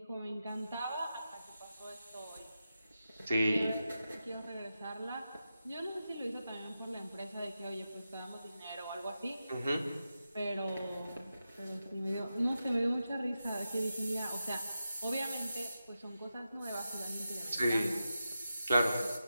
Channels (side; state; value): both; inverted; correlation -0.90